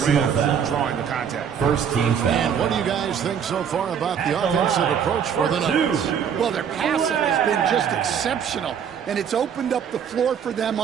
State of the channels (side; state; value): left; quieter; 7.8 dB